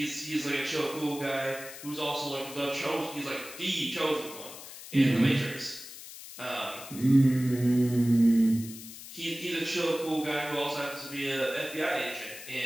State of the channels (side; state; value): left; noise; hiss, 14 dB below the sound